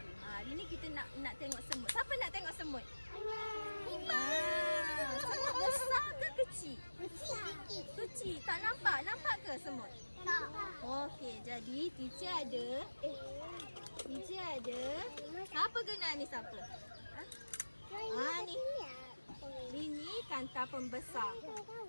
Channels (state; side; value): inverted; both; correlation -1.00